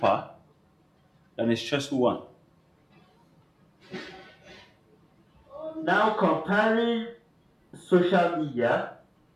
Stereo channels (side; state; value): both; identical; correlation 1.00